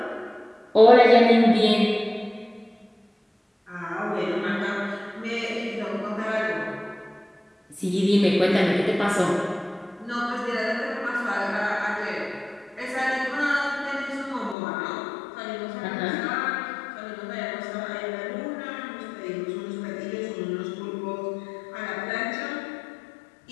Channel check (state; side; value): drops out; right; at 14.6 s